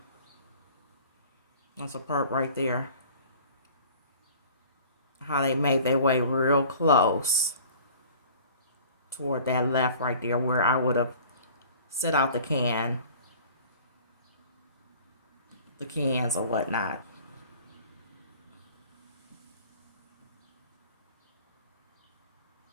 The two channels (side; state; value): both; inverted; correlation -0.48